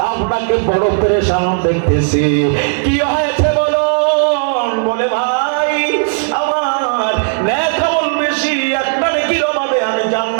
আপনাকে বড় পেরেশান দেখতেছি, কি হয়েছে বলুন? বলে ভাই আমার নেক আমল বেশি, একটা নেকির অভাবে আমি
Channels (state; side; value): silent; left; 66 dB below the other